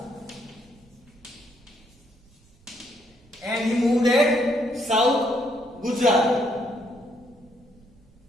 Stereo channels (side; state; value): right; noise; rumble, 29 dB below the sound